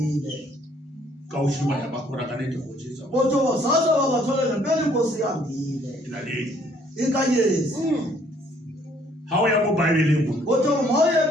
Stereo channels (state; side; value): normal; both; correlation 0.63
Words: ka o shi ba ya ba khora ka ne go tsa batho ba sasa ba bathola le pele inkosi ya bile ila le ikanyesi ha o ya mo Bible mo batho mo ye